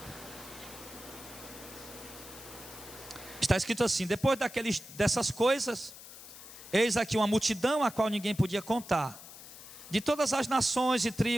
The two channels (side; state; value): left; noise; hiss, 16 dB below the sound